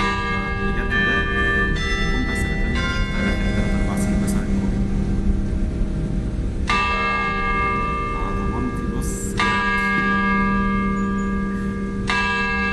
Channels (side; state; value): both; identical; correlation 1.00